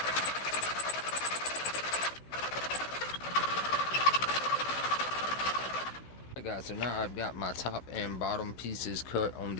Guys, so now I've got my top and bottom pieces cut on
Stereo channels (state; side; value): late; right; 16 ms